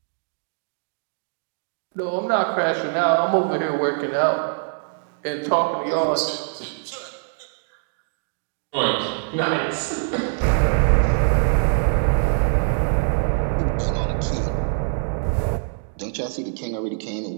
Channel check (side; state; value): left; silent; digital silence